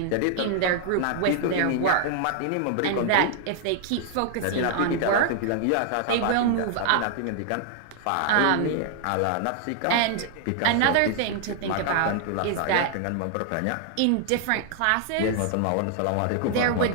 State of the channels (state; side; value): different; both; correlation 0.00